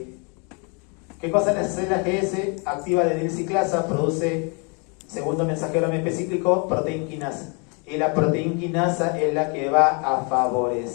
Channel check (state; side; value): quieter; right; 34.8 dB